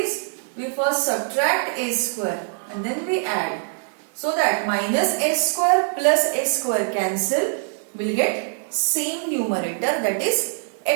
we first subtract a square and then we add, so that minus a square plus a square cancel, will get same numerator, that is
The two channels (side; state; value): left; silent; digital silence